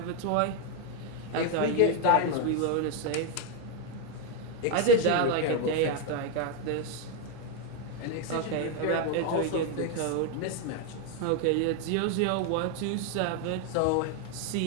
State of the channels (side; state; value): both; different; correlation 0.01